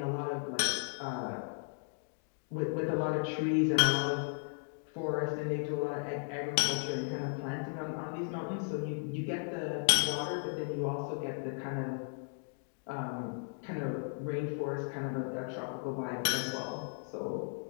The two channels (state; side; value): silent; right; 54 dB below the other